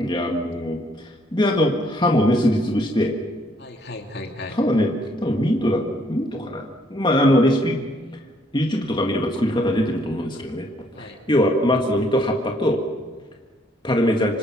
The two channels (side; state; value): both; normal; correlation 0.67